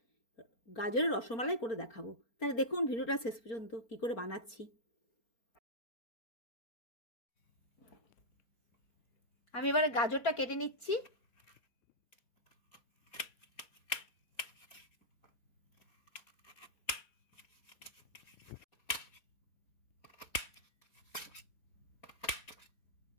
গাজরের রসমালাই করে দেখাবো। তাহলে দেখুন ভিডিওটা শেষ পর্যন্ত কি করে বানাচ্ছি। আমি এবারে গাজরটা কেটে নিচ্ছি।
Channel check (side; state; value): right; late; 4.4 ms